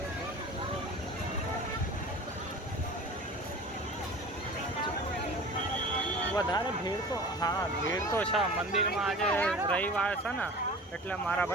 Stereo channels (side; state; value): both; normal; correlation 0.39